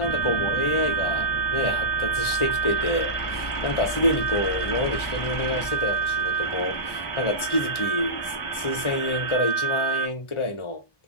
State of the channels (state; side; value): late; right; 1.4 ms